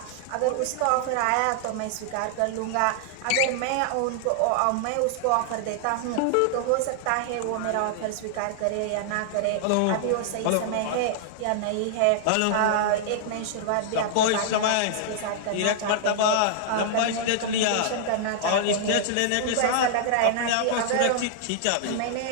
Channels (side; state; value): both; different; correlation -0.01